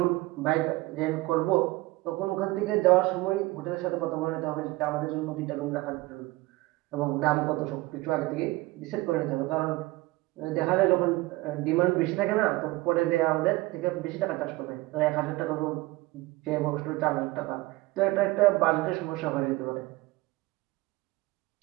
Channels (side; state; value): left; quieter; 20.6 dB